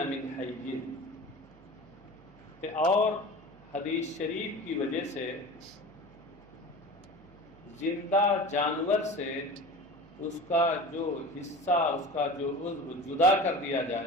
مِنْ حَيٍّ، اور حدیث شریف کی وجہ سے زندہ جانور سے اس کا جو حصہ، اس کا جو عضو جدا کر دیا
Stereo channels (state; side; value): noise; right; hum, 25 dB below the sound